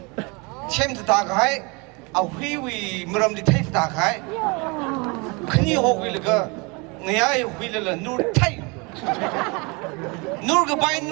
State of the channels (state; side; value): quieter; left; 29.0 dB